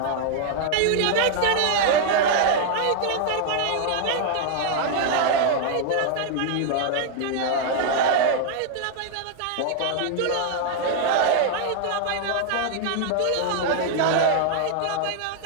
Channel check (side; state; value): both; different; correlation 0.00